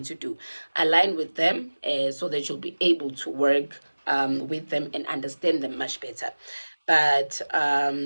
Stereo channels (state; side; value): inverted; both; correlation -1.00